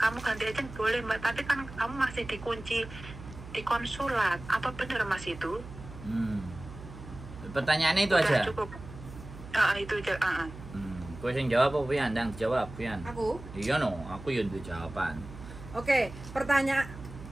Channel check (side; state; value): right; noise; hum, 14 dB below the sound